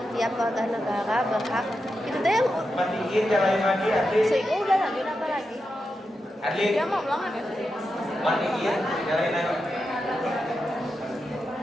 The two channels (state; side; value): normal; both; correlation 0.88